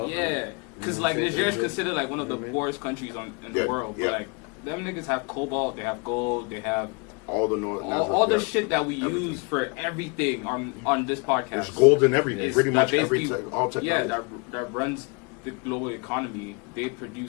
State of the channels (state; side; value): quieter; right; 32.9 dB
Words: yeah, because like Niger is considered like one of the poorest countries in the world. Yeah. But like them niggas have cobalt, they have gold, they have All the North. all the yeah. shit that we Everything. use for everything on this podcast. There's gold in everything. Is Pretty that much basically- everything. All technology. Yeah, that runs the global economy. They